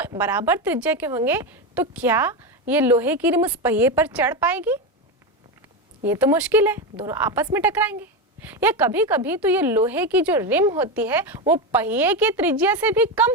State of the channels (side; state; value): both; normal; correlation 0.14